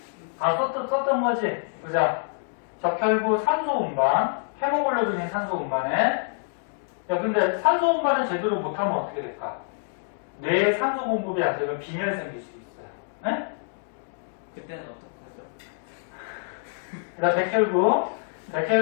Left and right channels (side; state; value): right; silent; digital silence